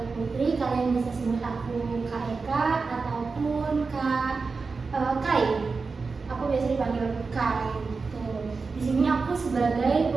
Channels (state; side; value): quieter; left; 4.5 dB